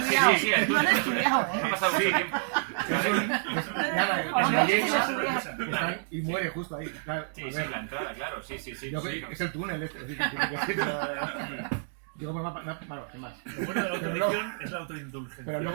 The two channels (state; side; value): silent; left; digital silence